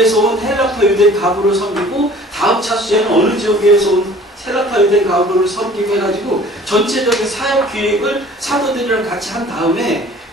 온 헬라파 유대인 가부를 섬기고 다음 차수에는 어느 지역에서 온 헬라파 유대인 가부를 섬기고 해가지고 전체적인 사역 기획을 사도들이랑 같이 한 다음에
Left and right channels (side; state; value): both; normal; correlation 0.49